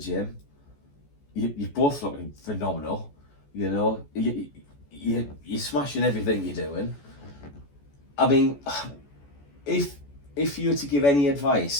You're both looking phenomenal, you're smashing everything you're doing. I mean, if you were to give any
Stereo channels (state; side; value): late; right; 14 ms